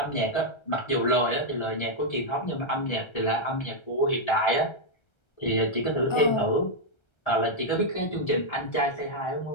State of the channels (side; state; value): right; late; 1.3 ms